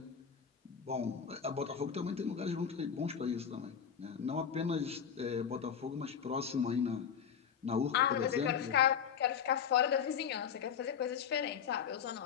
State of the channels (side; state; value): right; quieter; 7.6 dB